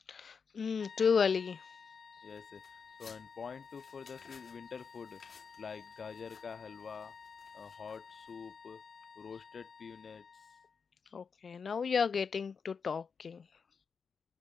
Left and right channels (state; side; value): quieter; right; 5.7 dB